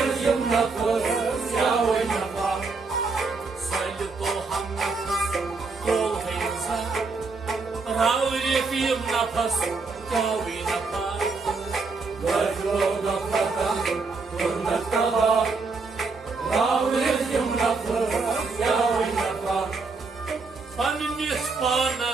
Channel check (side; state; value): left; quieter; 4.2 dB